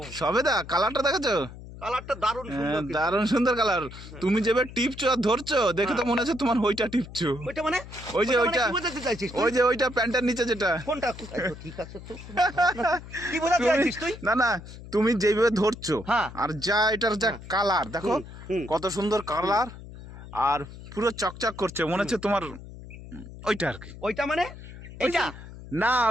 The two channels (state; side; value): noise; left; hum, 15 dB below the sound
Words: সবেদা কালারটা দেখেছো? কালারটা দারুণ সুন্দর কিন্তু। দারুণ সুন্দর কালার। তুমি যেভাবে টিপছো আর ধরছো দেখে তো মনে হচ্ছে তোমার ওইটা টিপছো। ওইটা মানে ওই যে ওইটা ওইটা, মানে কি বোঝাতে চাইছিস তুই? ওই যে ওইটা প্যান্টের নিচে যেটা। কোনটা? এই তো ঠিক আছে তো। কি বোঝাতে তুমি চাইছিস তুই? না না, তুমি যেভাবে ধরছো হ্যাঁ। আর যা এটার যা কালার দেখো, হুম। কত সুন্দর কালার আর পুরো চকচক করছে, মনে হচ্ছে তোমার ওইটা আর কি। ওইটা মানে এটা? না